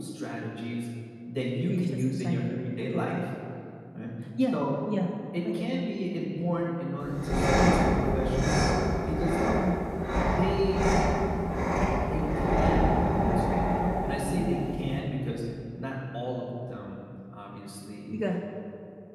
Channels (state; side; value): identical; both; correlation 1.00